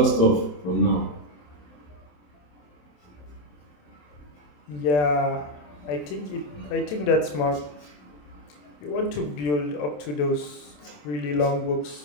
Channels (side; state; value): right; late; 27 ms